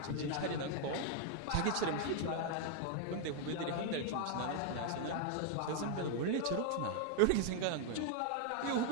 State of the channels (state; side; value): different; both; correlation 0.00